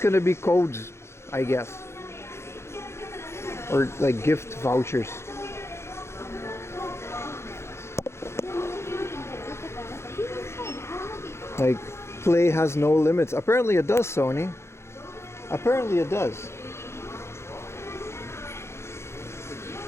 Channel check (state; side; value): late; right; 0.13 ms